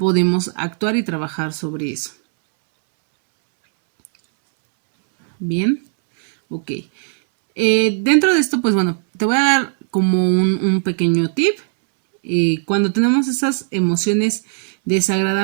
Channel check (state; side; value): silent; left; 68 dB below the other